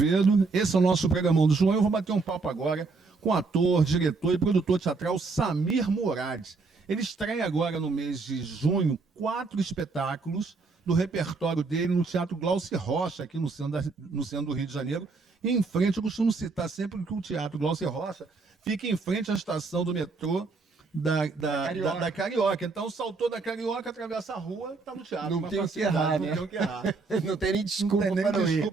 esse é o nosso programão do João. Eu vou bater um papo agora com o ator, diretor e produtor teatral Samir Murad. Ele estreia agora no mês de junho 4 espetáculos do repertório dele no Teatro Glauci Rocha, aqui no centro do Rio de Janeiro. E em frente, eu costumo citar sempre que o Teatro Glauci Rocha fica em frente à estação do metrô da Carioca. Então, saltou da Carioca, atravessa a rua, está no teatro. Não tem o que errar, né? Não tem o que errar. Não tem nem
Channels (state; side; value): quieter; left; 4.1 dB